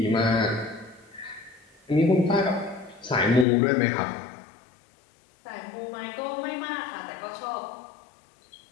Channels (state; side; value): drops out; right; at 3.5 s